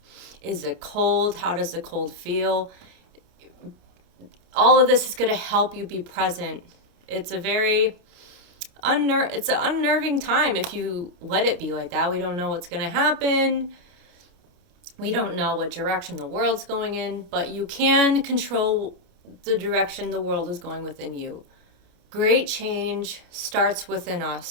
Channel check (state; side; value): late; left; 29 ms